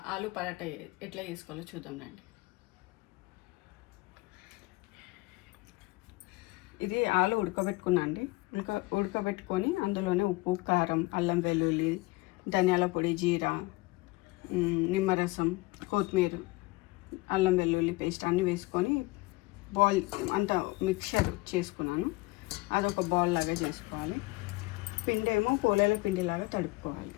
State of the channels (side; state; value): right; quieter; 22.6 dB